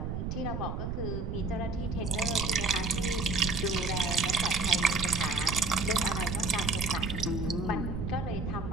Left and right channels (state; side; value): noise; right; rumble, 3 dB below the sound